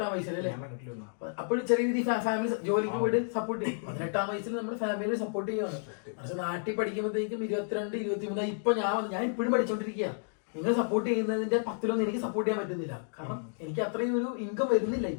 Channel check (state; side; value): silent; right; digital silence